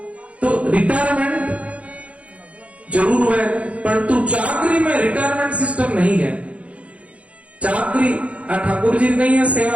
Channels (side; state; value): left; late; 0.064 ms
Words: तो रिटायरमेंट जरूर है, परंतु चाकरी में रिटायरमेंट सिस्टम नहीं है। चाकरी ठाकुर जी नहीं है